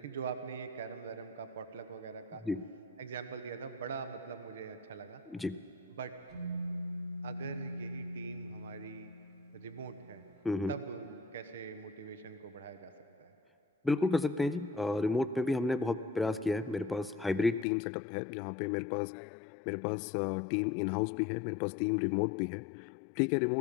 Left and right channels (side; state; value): right; drops out; at 17.7 s